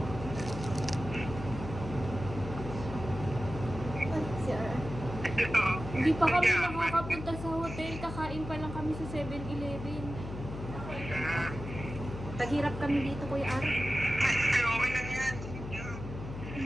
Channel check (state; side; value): noise; left; hum, 9 dB below the sound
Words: Si Ara. Hindi pa kami nakakapunta sa hotel. Kakain pa lang kami sa 7-Eleven. Taghirap kami dito, Kuya Ara. Okay lang yan.